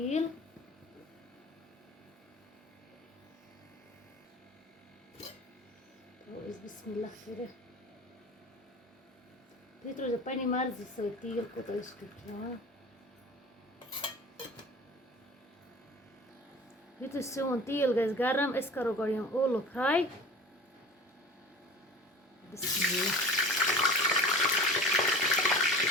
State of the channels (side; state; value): both; normal; correlation 0.40